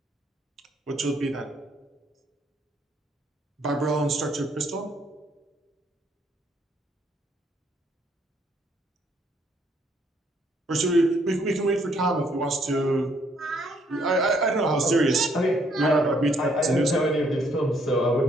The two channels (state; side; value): normal; both; correlation 0.68